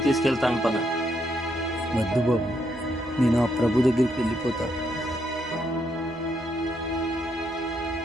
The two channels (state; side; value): normal; both; correlation 0.77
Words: తీసుకెళ్తాను పద. వద్దు బాబు, నేను ఆ ప్రభు దగ్గరికి వెళ్ళిపోతా.